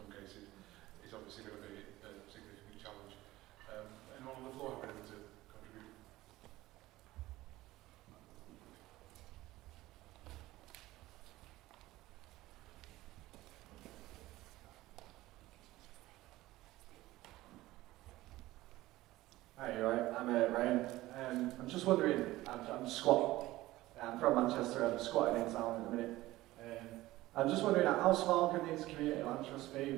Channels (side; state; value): left; quieter; 17.4 dB